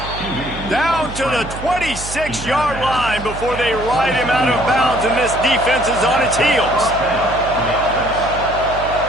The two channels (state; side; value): noise; right; hum, 11 dB below the sound